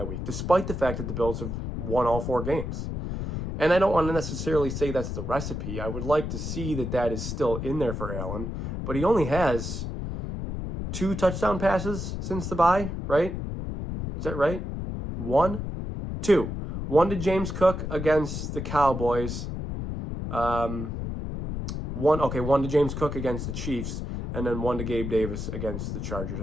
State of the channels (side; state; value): left; noise; rumble, 5 dB below the sound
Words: week, despite the fact that the Bills have won all 4 games. And I don't want to necessarily say that's the recipe. I would like to see that is still in there for Allen, but he only has 2 touchdown passes since the bye, right? Is that right? 1? 2. 1 to James Cook against the Cowboys. One to James Cook against the Chiefs, and then 1 to Gabe Davis against the Chargers.